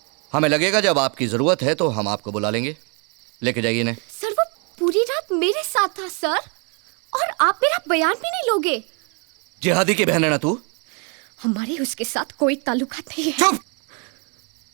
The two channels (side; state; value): left; quieter; 35.7 dB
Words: हमें लगेगा जब आपकी जरूरत है तो हम आपको बुला लेंगे। लेके जाइए इन्हें। सर वो पूरी रात मेरे साथ था सर, और आप मेरा बयान भी नहीं लोगे? जिहादी की बहन है ना तू? हमारे उसके साथ कोई ताल्लुकात नहीं है। चुप!